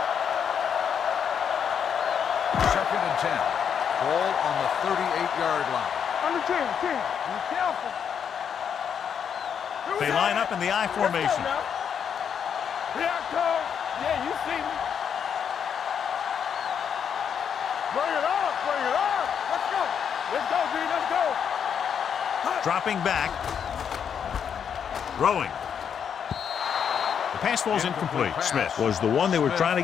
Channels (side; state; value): right; quieter; 7.7 dB